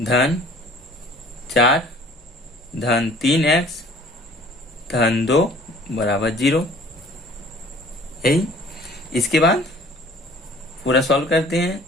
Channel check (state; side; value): normal; both; correlation 0.51